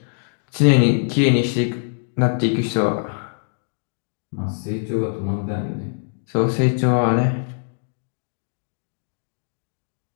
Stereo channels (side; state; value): right; silent; digital silence